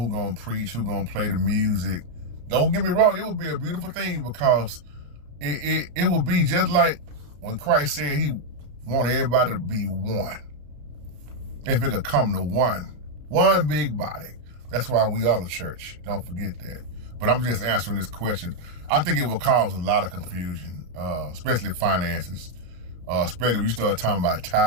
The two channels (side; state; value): left; late; 34 ms